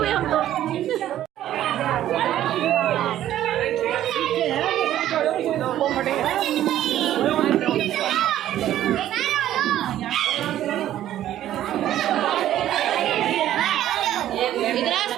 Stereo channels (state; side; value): quieter; left; 12.4 dB